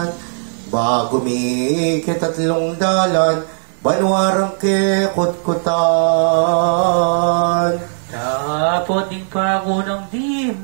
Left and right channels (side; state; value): left; silent; digital silence